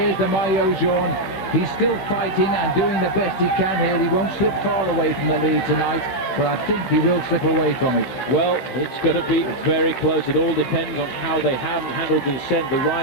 the Maillot Jaune. He's still fighting and doing the best he can here. He won't slip far away from the lead tonight, but I think he will slip away from it. Well, it's going to be very close. It all depends on how they have handled the descent. The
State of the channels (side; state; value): right; late; 16 ms